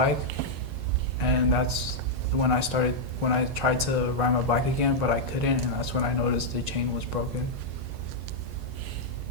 And that's when I tried to ride my bike again, but I couldn't, and that's when I noticed the chain was broken.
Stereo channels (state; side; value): normal; both; correlation -0.04